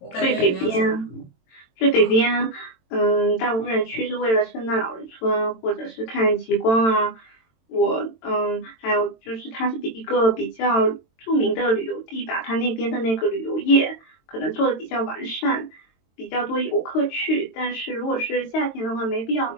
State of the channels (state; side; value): late; right; 22 ms